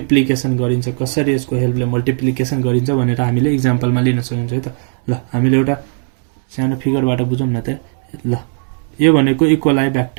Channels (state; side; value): silent; left; 60 dB below the other